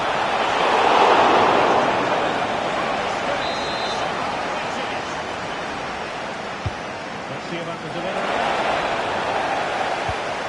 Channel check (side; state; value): both; identical; correlation 1.00